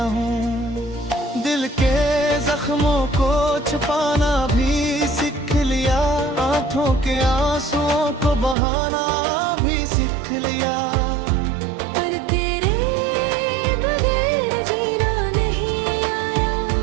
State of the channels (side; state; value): left; drops out; at 8.6 s